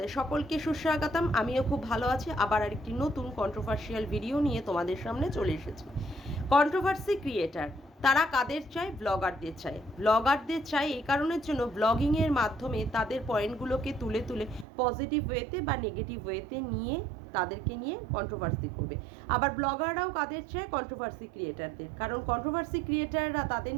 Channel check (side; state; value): left; drops out; at 14.7 s